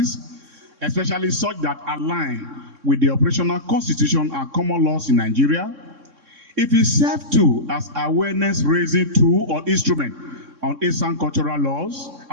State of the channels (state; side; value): late; left; 3.6 ms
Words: especially such that align with the operational constitution and common laws in Nigeria, it will serve too as awareness-raising tool or instrument on Esan cultural laws